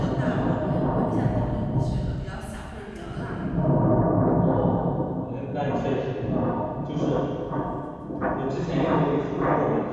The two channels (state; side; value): identical; both; correlation 1.00